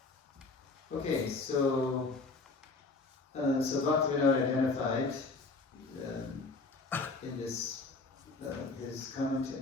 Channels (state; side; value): quieter; right; 3.7 dB